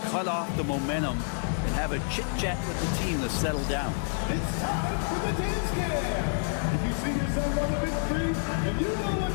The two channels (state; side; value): silent; right; 59 dB below the other